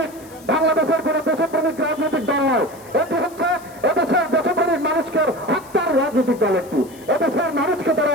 বাংলাদেশের কোন দেশপ্রেমিক রাজনৈতিক দল নয়, এটি হচ্ছে এদেশের দেশপ্রেমিক মানুষকে হত্যার রাজনৈতিক দল। একটি এদেশের মানুষকে তারা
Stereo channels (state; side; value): noise; left; hiss, 23 dB below the sound